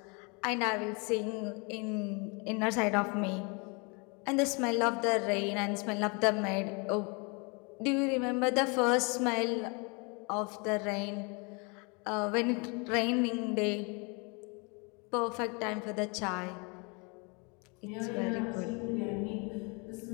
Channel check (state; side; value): quieter; right; 31.8 dB